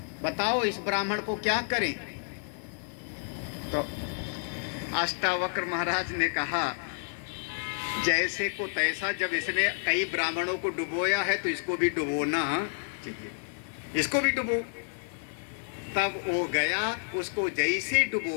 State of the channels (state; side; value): silent; right; 58 dB below the other